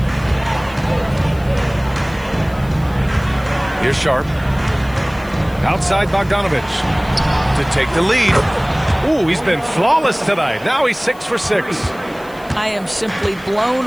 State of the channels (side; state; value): left; noise; hiss, 25 dB below the sound